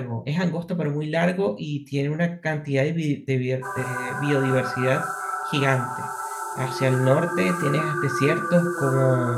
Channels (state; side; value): identical; both; correlation 1.00